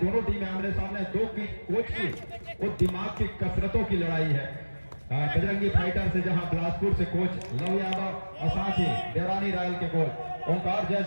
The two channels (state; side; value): inverted; both; correlation -1.00